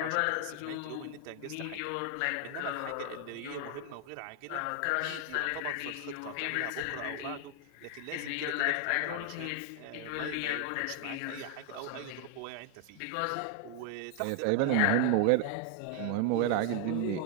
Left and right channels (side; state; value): both; different; correlation 0.00